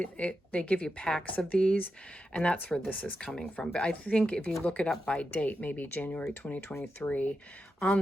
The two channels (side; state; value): both; normal; correlation 0.88